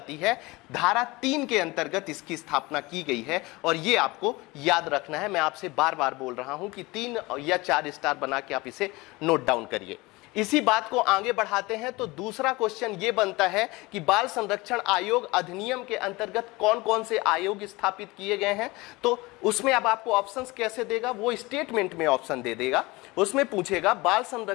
है। धारा 3 के अंतर्गत इसकी स्थापना की गई है और यह आपको याद रखना है। मैं आपसे बार बार बोल रहा हूं कि 3 या 4 स्टार बना के आप इसे नोट डाउन करिए। इसी बात को आगे बढ़ाते हैं तो दूसरा क्वेश्चन ये बनता है कि बाल संरक्षण आयोग अधिनियम के अंतर्गत कौन कौन से आयोग स्थापित किए गए हैं। तो उसमें अब आपको ऑप्शंस कैसे देगा, वो स्टेटमेंट में ऑप्शन दे देगा। उसमें पूछेगा बाल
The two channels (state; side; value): quieter; right; 22.6 dB